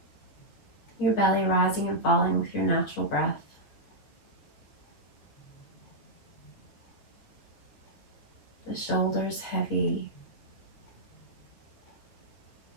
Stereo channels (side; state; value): right; late; 8.6 ms